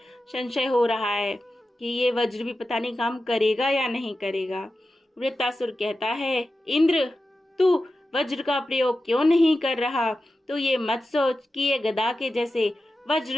संशय हो रहा है कि ये वज्र भी पता नहीं काम करेगा या नहीं करेगा। वृत्तासुर कहता है, इंद्र तू वज्र का प्रयोग क्यों नहीं कर रहा? तो ये मत सोच कि ये गदा के जैसे वज्र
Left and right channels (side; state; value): both; normal; correlation 0.92